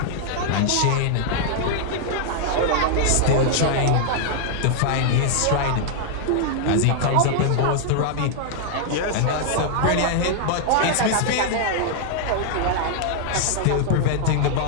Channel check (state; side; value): different; both; correlation -0.01